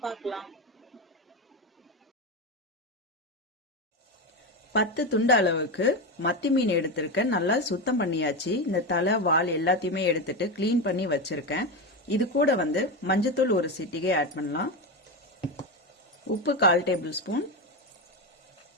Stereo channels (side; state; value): both; normal; correlation 0.15